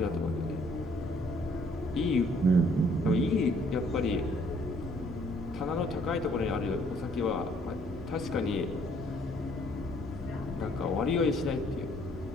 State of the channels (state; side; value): normal; both; correlation 0.63